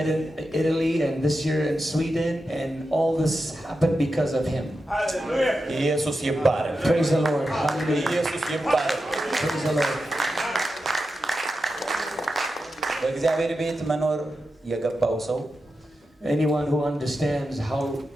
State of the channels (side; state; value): both; normal; correlation 0.90